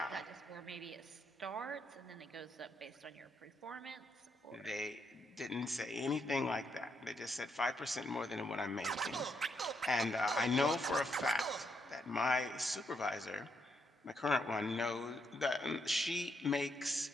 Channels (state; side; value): normal; both; correlation 0.77